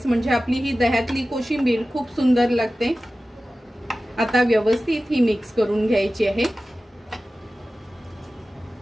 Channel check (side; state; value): both; normal; correlation 0.95